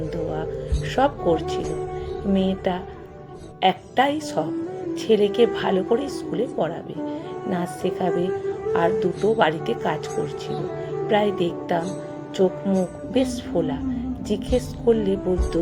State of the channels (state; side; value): identical; both; correlation 1.00